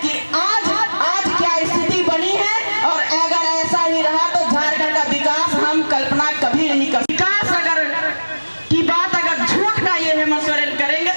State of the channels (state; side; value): inverted; both; correlation -1.00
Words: कि आज क्या स्थिति बनी है, और अगर ऐसा ही रहा तो झारखंड का विकास हम कल्पना कभी नहीं कर। विकास अगर की बात अगर झूठ का ये हेमंत सोरेन करेंगे